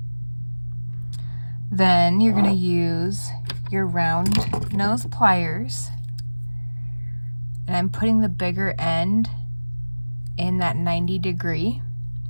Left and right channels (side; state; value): both; inverted; correlation -1.00